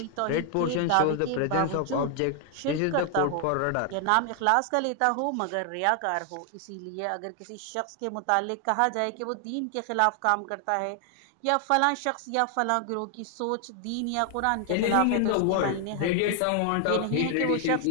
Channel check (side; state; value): both; different; correlation 0.00